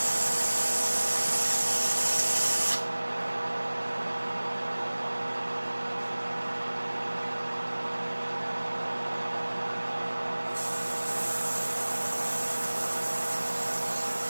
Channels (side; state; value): both; inverted; correlation -1.00